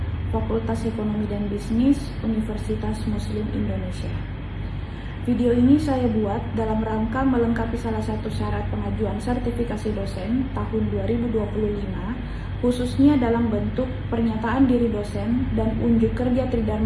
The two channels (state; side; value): identical; both; correlation 1.00